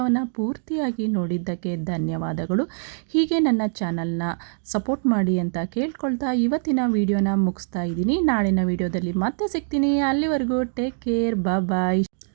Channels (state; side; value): silent; left; digital silence